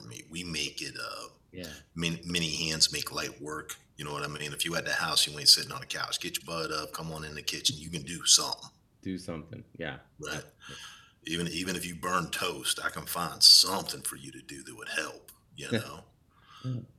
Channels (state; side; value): identical; both; correlation 1.00